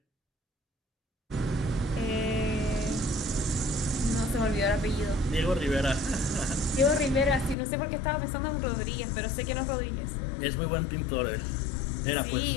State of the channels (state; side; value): drops out; right; at 7.6 s